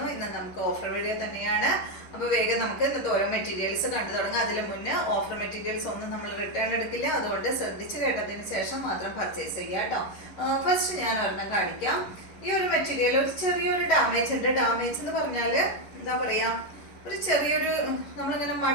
ഇന്ന് നമുക്ക് ഓഫർ വീഡിയോ തന്നെയാണ്. അപ്പോൾ വേഗം നമുക്ക് ഇന്നത്തെ ഓരോ മെറ്റീരിയൽസ് കണ്ടു തുടങ്ങാം. അതിന് മുന്നേ ഓഫർ മെറ്റീരിയൽസ് ഒന്നും നമ്മൾ റിട്ടേൺ എടുക്കില്ല, അതുകൊണ്ട് ശ്രദ്ധിച്ച് കേട്ടതിന് ശേഷം മാത്രം പർച്ചേസ് ചെയ്യുക കേട്ടോ. ഫസ്റ്റ് ഞാൻ ഒരെണ്ണം കാണിക്കാം. ഈ ഒരു മെറ്റീരിയൽ ഒരു ചെറിയൊരു ഡാമേജ് ഉണ്ട്. ഡാമേജ് എന്ന് പറഞ്ഞാൽ എന്താ പറയുക, ഒരു ചെറിയൊരു നമ്മളിങ്ങനെ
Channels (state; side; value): late; right; 11 ms